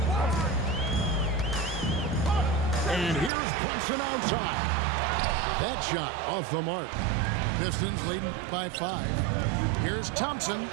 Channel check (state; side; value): drops out; left; at 3.3 s